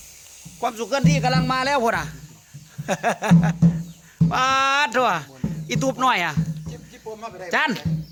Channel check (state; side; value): identical; both; correlation 1.00